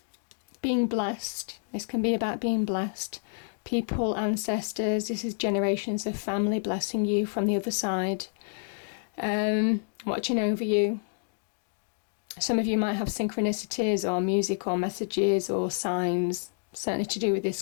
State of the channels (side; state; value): right; silent; digital silence